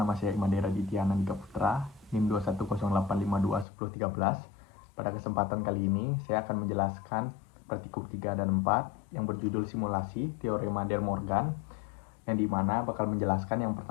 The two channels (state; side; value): drops out; right; at 3.7 s